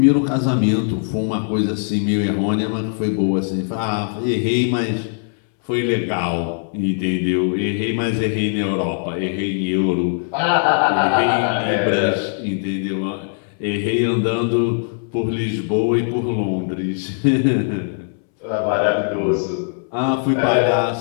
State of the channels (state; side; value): silent; right; 64 dB below the other